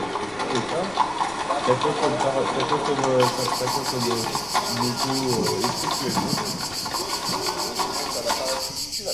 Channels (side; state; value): left; noise; rumble, 19 dB below the sound